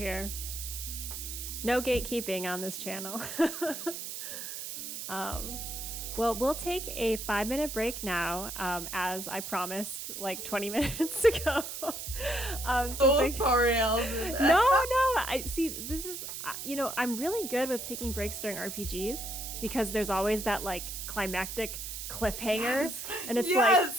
No gatekeeping on this channel. Well, we'll take a 5-minute break now, as I promised like 20 minutes ago. Sorry, Alvin. No. I see. This is, I'm really good with taking breaks during RPGs because there's always that like climactic cliffhanger, and it's like,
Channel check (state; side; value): noise; right; hiss, 7 dB below the sound